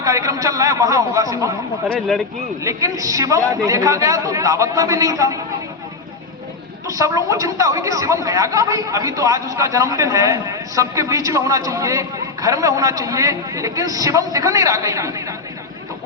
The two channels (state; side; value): quieter; right; 3.9 dB